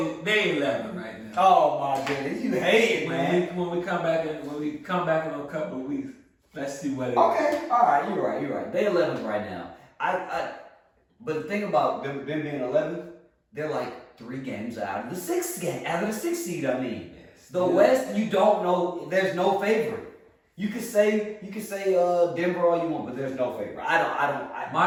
11 right now. Oh my goodness, you hate it, man. When we come back in a couple of weeks, let's see what it is. Okay, all right, you're right. They 11th right now. But the thing about them being 11th, they're like 3 games out of the 6th seed. I mean, yes. The West, you don't know. There's no favorite. You could say Denver all you want, but there's no favorite.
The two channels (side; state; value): both; identical; correlation 1.00